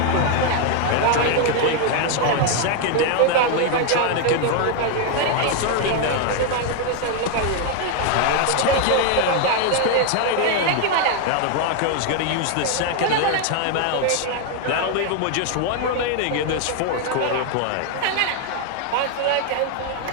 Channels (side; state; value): both; different; correlation 0.00